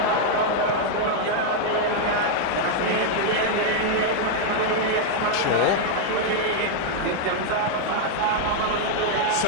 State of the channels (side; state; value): both; different; correlation -0.01